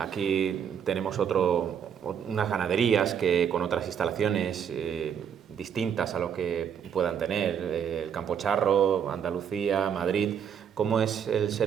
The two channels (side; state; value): left; quieter; 8.0 dB